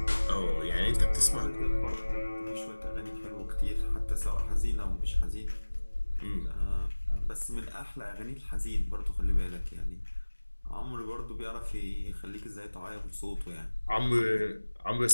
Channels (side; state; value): both; inverted; correlation -1.00